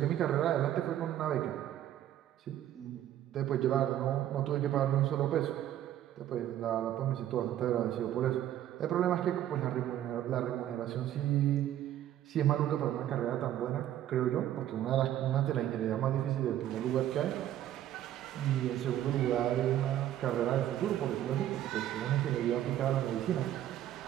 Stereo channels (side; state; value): left; quieter; 12.0 dB